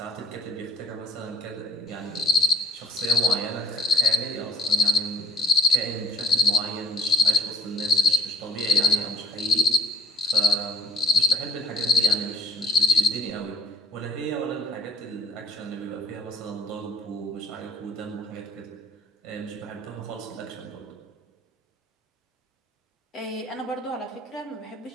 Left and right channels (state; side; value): normal; both; correlation 0.50